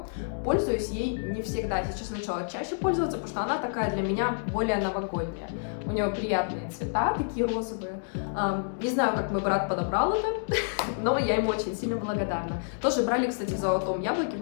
пользуюсь ей не всегда. Сейчас начала чаще пользоваться, потому что она такая для меня более новогодняя. У нее приятные цвета, такие розовые. Не знаю, как мой брат подобрал это, но я ему очень сильно благодарна. Тоже брали, кстати, в «Золотом яблоке» в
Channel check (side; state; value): right; silent; digital silence